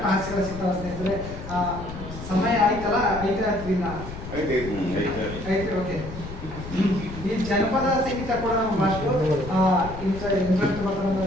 ಹಾಸ್ಯಗಳ ಸಿಗ್ತಾವ ಸ್ನೇಹಿತರೆ. ಸಮಯ ಆಯ್ತಲ್ಲ, ಐತೆ. ಓಕೆ, ಈ ಜನಪದ ಸಂಗೀತ ಕೂಡ ನಮ್ಮ ಭಾಷೆ ಇಂಟ್ರೆಸ್ಟ್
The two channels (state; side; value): noise; left; rumble, 10 dB below the sound